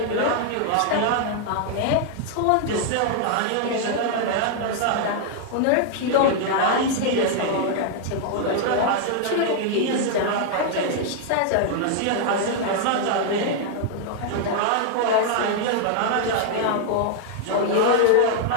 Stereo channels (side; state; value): both; different; correlation 0.00